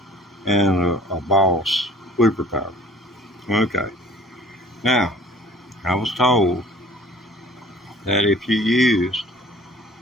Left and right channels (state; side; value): normal; both; correlation 0.50